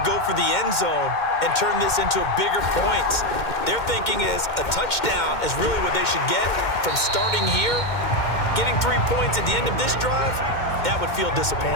go for the end zone and turn this into a bigger point. Their thinking is a touchdown is really what they should get from starting here. Getting 3 points at the end of this drive, that would feel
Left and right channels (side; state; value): right; late; 2.1 ms